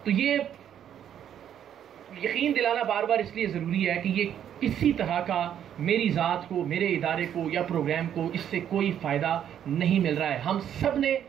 تو یہ یقین دلانا بار بار اس لیے ضروری ہے کہ یہ کسی طرح کا میری ذات کو، میرے ادارے کو یا پروگرام کو اس سے کوئی فائدہ نہیں مل رہا ہے. ہم سب نے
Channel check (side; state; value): left; quieter; 9.7 dB